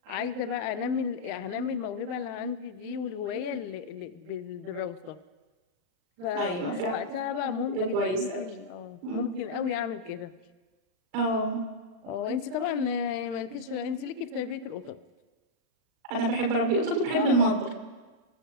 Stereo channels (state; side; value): late; left; 39 ms